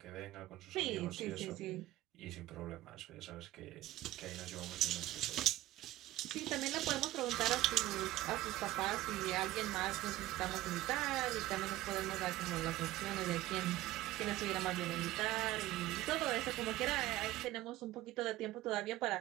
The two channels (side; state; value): left; quieter; 16.1 dB